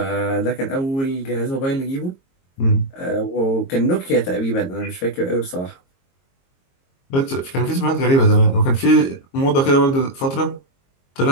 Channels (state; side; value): late; right; 22 ms